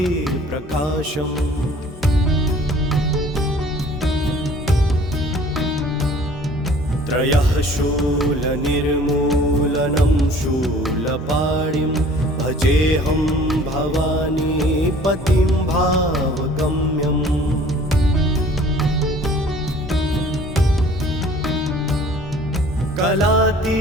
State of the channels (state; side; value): normal; both; correlation 0.51